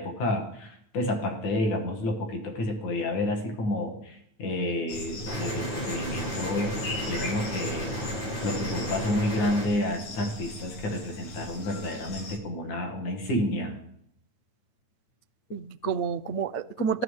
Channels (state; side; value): late; right; 9.1 ms